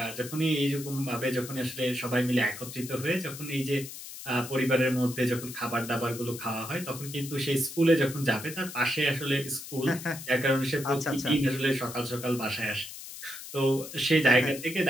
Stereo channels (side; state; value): left; noise; hiss, 12 dB below the sound